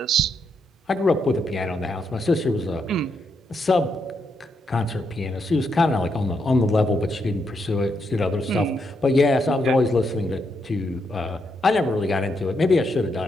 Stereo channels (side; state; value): both; normal; correlation 0.79